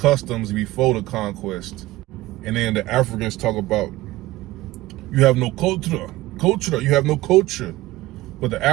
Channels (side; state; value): left; quieter; 18.0 dB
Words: before the conquest. And then the Africans talk about, you have no culture, you have no culture. But the